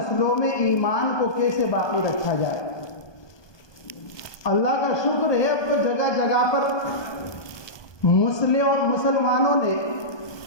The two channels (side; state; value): right; late; 1.2 ms